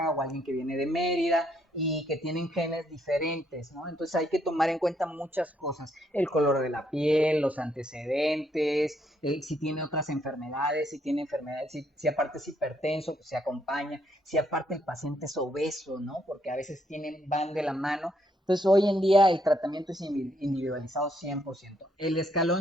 o alguien que viene de Mérida, y que tienen genes diferentes, ¿no? Entonces hay que tomar en cuenta muchas cosas, el color de la piel, los antecedentes, si tiene otras enfermedades, si tiene enfermedades, si aparte es hipertenso, pues se acompaña, si aparte el paciente es obeso, ¿no? Porque a veces van de la mano. Entonces hoy en día el tratamiento es individualizado 100%. El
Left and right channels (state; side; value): normal; both; correlation 0.73